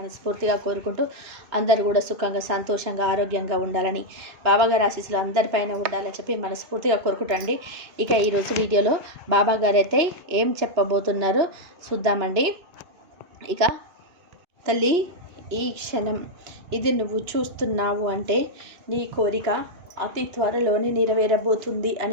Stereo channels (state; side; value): late; left; 2.9 ms